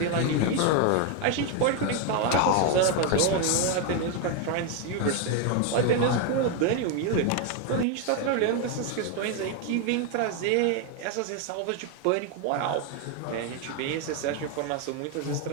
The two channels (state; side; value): different; both; correlation 0.01